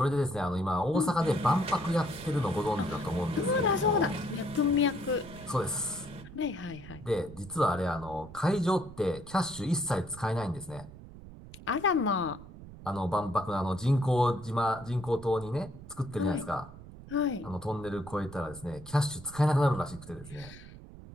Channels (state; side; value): noise; right; rumble, 16 dB below the sound